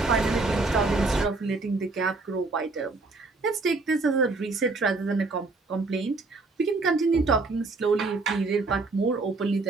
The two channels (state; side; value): quieter; left; 3.6 dB